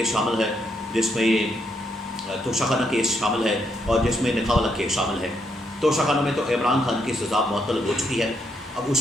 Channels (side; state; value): both; normal; correlation 0.76